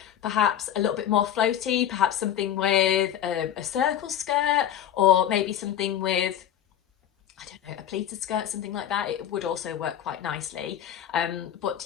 perhaps a little bit more floaty, perhaps something with a circle skirt, or maybe something with, I don't know, a pleated skirt, something like that, it would also work quite nicely. But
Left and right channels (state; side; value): quieter; right; 10.5 dB